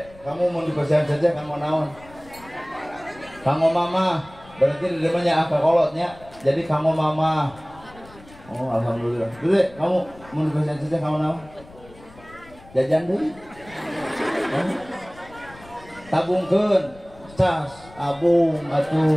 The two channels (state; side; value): noise; left; rumble, 22 dB below the sound